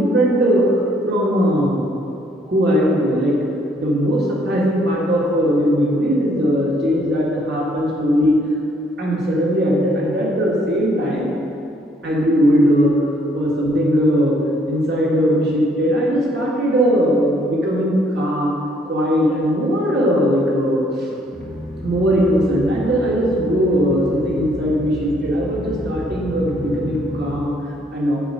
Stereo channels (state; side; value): normal; both; correlation 0.66